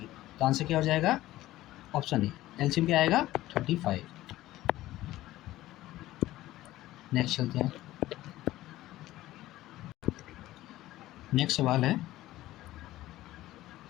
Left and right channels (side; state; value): right; quieter; 15.8 dB